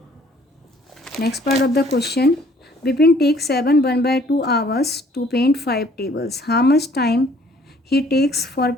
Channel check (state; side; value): normal; both; correlation 0.59